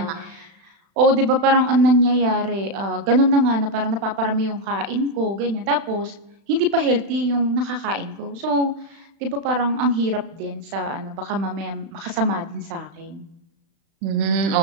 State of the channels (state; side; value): late; left; 36 ms